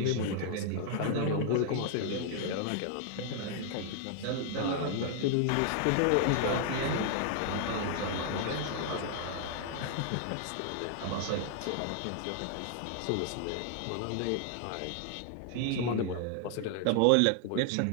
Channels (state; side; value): different; both; correlation 0.00